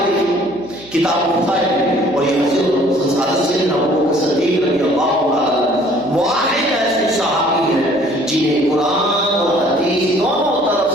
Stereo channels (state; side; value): noise; right; hum, 22 dB below the sound